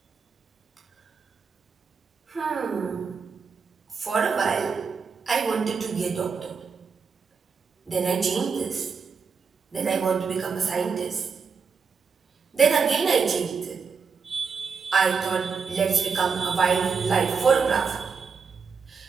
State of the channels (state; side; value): quieter; left; 5.5 dB